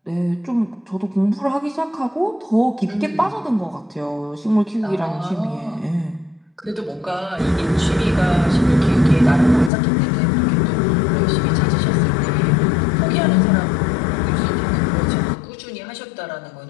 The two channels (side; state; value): right; drops out; at 9.7 s